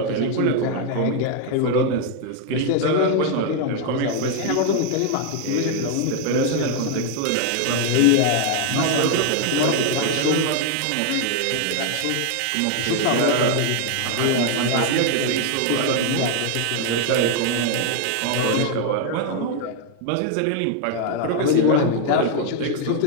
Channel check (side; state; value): both; different; correlation 0.00